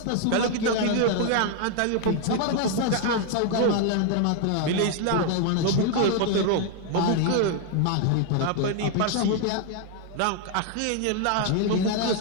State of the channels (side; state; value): both; different; correlation 0.00